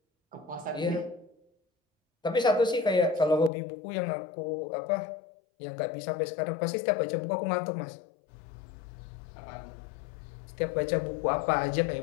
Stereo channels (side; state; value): right; drops out; at 3.5 s